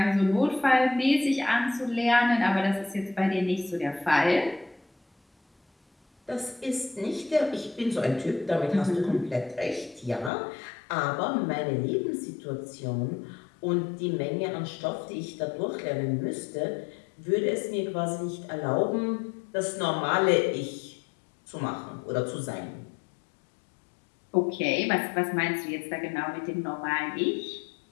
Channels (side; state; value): right; drops out; at 10.3 s